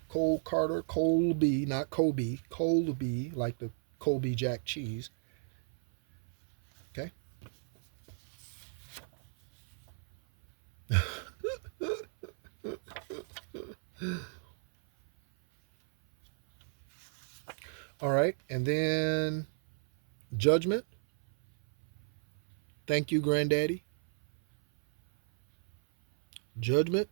Cole, Carter, Colby, not Kobe. Colby, like the Colby Jack cheese. Okay? All right. And then Judgment. Thank you, Granddaddy. Judgment.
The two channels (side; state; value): left; silent; 56 dB below the other